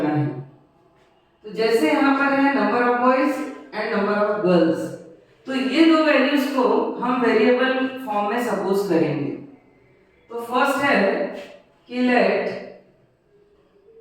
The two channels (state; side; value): identical; both; correlation 1.00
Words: है। तो जैसे यहाँ पर है number of boys and number of girls, तो ये दो वैल्यूज को हम वेरिएबल फॉर्म में सपोज करेंगे। तो फर्स्ट है कि let